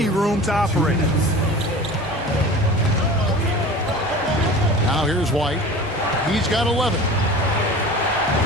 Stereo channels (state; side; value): normal; both; correlation 0.38